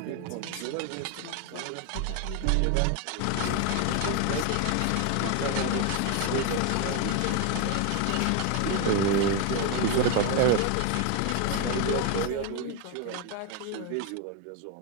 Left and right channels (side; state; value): both; different; correlation 0.01